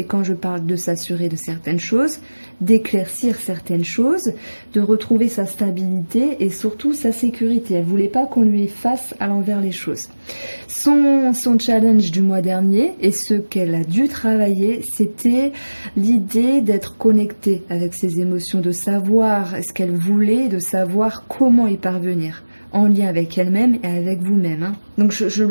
quand je parle de s'assurer de certaines choses, d'éclaircir certaines choses, de retrouver sa stabilité et surtout sa sécurité. Elle ne voulait pas qu'on lui fasse à l'envers les choses. Son challenge du mois dernier et ce qu'elle a dû travailler, c'était l'idée d'être connectée avec ses émotions, de savoir ce qu'elle voulait, de savoir comment y parvenir, en lien avec elle-même et avec vous-même. Hein. Donc je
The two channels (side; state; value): both; inverted; correlation -1.00